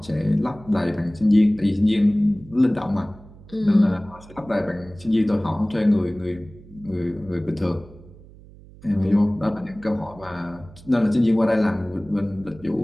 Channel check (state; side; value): noise; right; hum, 21 dB below the sound